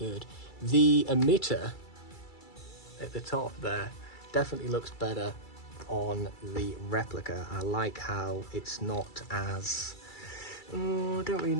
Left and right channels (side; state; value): right; late; 2.3 ms